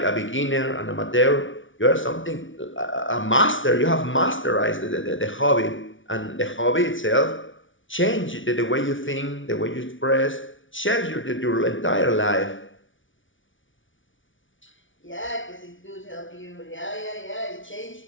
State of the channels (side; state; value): right; late; 0.56 ms